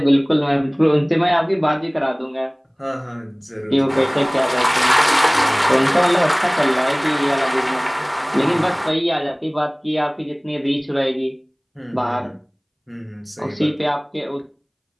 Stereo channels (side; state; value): both; identical; correlation 1.00